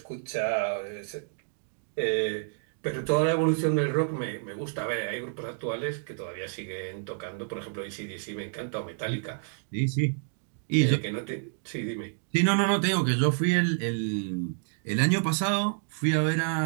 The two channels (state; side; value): silent; left; digital silence